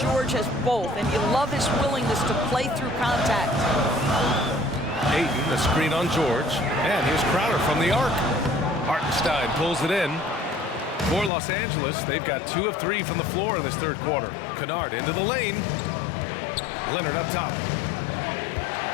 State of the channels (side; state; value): right; drops out; at 11.3 s